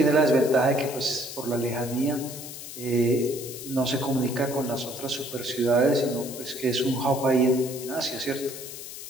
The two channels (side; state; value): left; noise; hiss, 11 dB below the sound